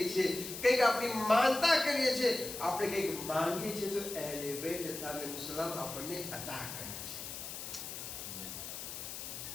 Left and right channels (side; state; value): left; noise; hiss, 8 dB below the sound